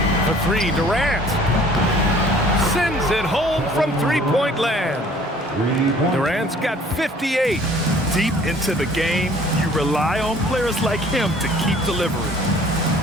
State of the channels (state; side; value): normal; both; correlation 0.53